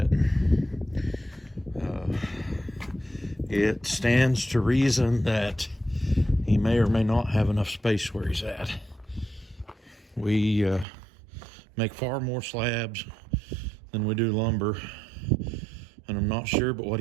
It stands to reason that he may or may not have enough space where he's at. We make far more slabs than we do lumber, and I'm not sure but what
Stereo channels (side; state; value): left; drops out; at 10.9 s